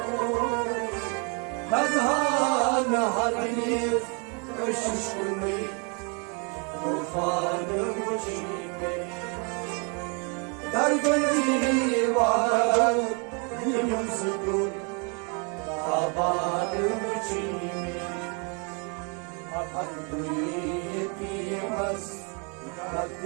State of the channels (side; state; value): left; quieter; 35.8 dB